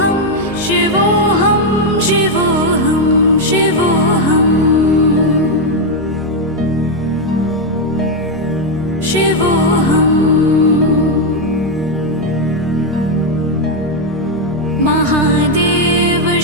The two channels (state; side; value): normal; both; correlation 0.02